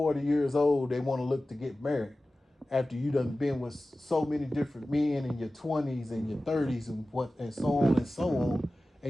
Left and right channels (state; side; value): normal; both; correlation 0.96